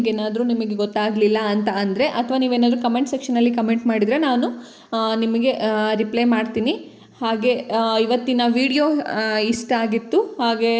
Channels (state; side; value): identical; both; correlation 1.00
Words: ಗೊತ್ತಾಗಲಿಲ್ಲ ಅಂತ ಅಂದರೆ, ಅಥವಾ ನೀವೇನಾದರೂ ಕಮೆಂಟ್ ಸೆಕ್ಷನಲ್ಲಿ ಕಮೆಂಟ್ ಮಾಡಿದರೆ ನಾನು ನಿಮಗೆ ರಿಪ್ಲೈ ಮಾಡ್ತೀನಿ. ಹಾಗೆ ಇವತ್ತಿನ ವಿಡಿಯೋ ಇಷ್ಟ ಆಗಿತ್ತು. ಹಾಗೆ